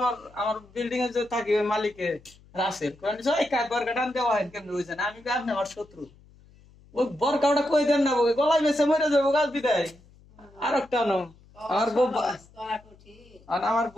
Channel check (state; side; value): noise; left; hum, 27 dB below the sound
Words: আমার বিল্ডিং এ যে থাকি ওই মালিকের রাসেল বরকাটান দেওয়া হয় কেমন রয়েছে না আমি আপনি আমার শত্রু ওই বরকাটা কই দেন না গলায় বেছে মরে যাবো গাছ বিদায় আর একটা নো আমার আর আমার